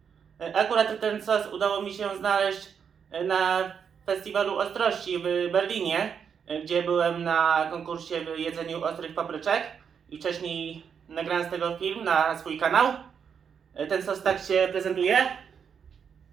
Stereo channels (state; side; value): quieter; left; 7.1 dB